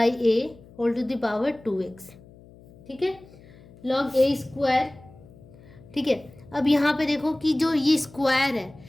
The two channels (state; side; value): noise; left; hum, 23 dB below the sound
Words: a whole to the power 2x। ठीक है, लॉग a स्क्वायर। ठीक है, अब यहाँ पे देखो कि जो ये स्क्वायर है,